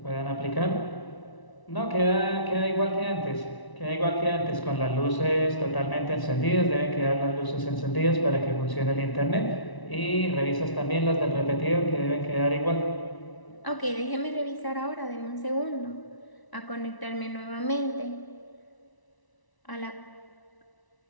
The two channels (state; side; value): late; right; 1.0 ms